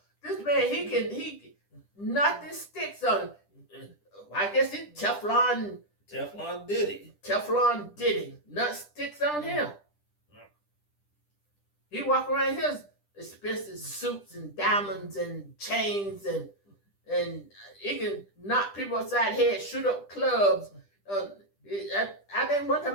This man, he nothing sticks on him. I guess it's Teflon Diddy. Teflon Diddy. Nothing sticks on him. He walk around his expensive suits and diamonds and chains and he can knock people upside the head, shoot up clubs. I think one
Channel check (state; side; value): late; right; 10 ms